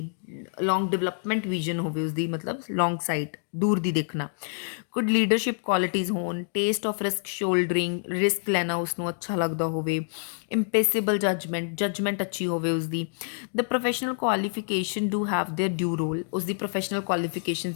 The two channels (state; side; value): silent; right; digital silence